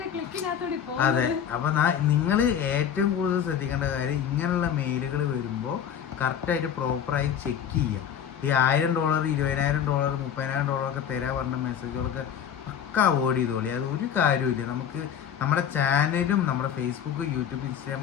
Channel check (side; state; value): right; quieter; 8.7 dB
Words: അതെ. അപ്പൊ നിങ്ങൾ ഏറ്റവും കൂടുതൽ ശ്രദ്ധിക്കേണ്ട കാര്യം ഇങ്ങനെയുള്ള മെയിലുകൾ വരുമ്പോൾ കറക്റ്റായിട്ട് പ്രോപ്പറായി ചെക്ക് ചെയ്യുക. ഈ $1000 $20,000 $30,000 ഒക്കെ തരാൻ പറഞ്ഞ മെസ്സേജുകളൊക്കെ പക്ക അവോയ്ഡ് ചെയ്തോളി. അത് ഒരു കാര്യമില്ല. നമുക്ക് നമ്മുടെ ചാനലും നമ്മുടെ ഫേസ്ബുക്ക് യൂട്യൂബ്